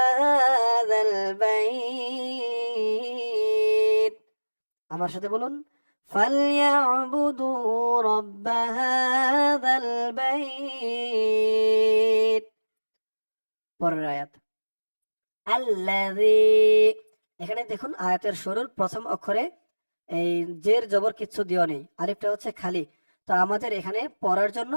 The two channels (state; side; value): inverted; both; correlation -1.00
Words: هذا البيت। আমার সাথে বলুন, فليعبدوا رب هذا البيت। পরের আয়াত, الذي, এখানে দেখুন আয়াতের শুরুর প্রথম অক্ষরে এই জের জবর কিচ্ছু দিও নেই, আলিফটা হচ্ছে খালি। তো আমাদের এখানে পড়ার জন্য